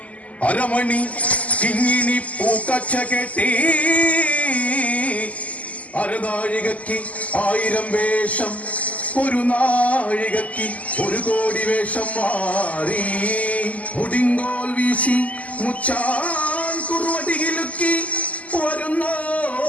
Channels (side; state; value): right; late; 0.072 ms